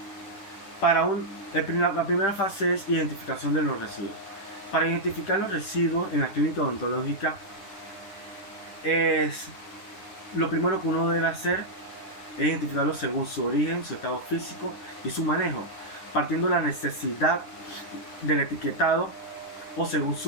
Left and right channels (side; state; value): right; late; 10 ms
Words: La primera fase es identificación de los residuos. Para identificar los residuos en la clínica odontológica, lo primero que uno debe hacer es identificarlos según su origen, su estado físico y su manejo, partiendo de la necesidad del etiquetado o según